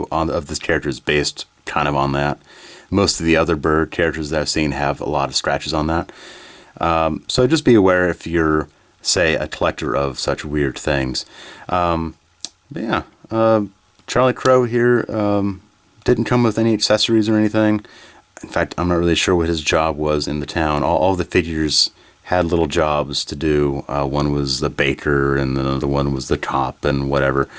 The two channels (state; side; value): identical; both; correlation 1.00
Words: of this character is based kind of on that. Most of the other bird characters that I've seen have a lot of scratches on that. So just be aware if you're, say, a collector of such weird things. But yeah, Charlie Crow here didn't come with any accessories or anything. In fact, I'm not really sure what his job was in the town. All the figures had little jobs to do. One was the baker, and the other one was the cop, and whatever.